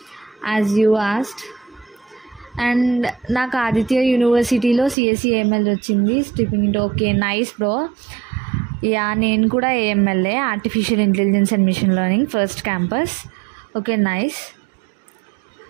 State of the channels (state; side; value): drops out; left; at 5.0 s